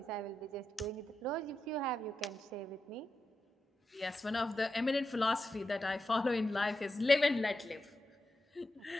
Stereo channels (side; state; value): both; normal; correlation 0.88